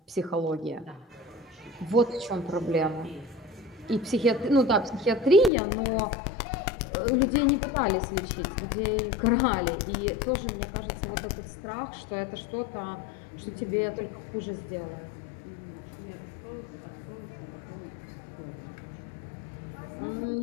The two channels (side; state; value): right; drops out; at 5.5 s